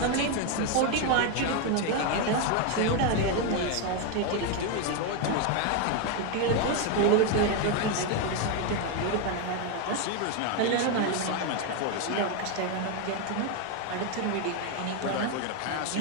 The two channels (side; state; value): both; different; correlation 0.01